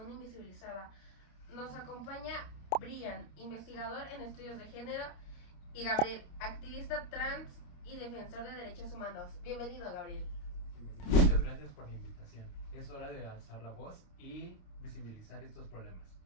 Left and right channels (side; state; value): right; late; 28 ms